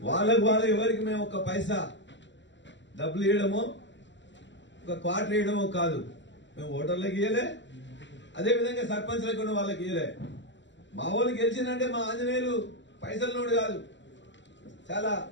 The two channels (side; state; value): right; late; 0.53 ms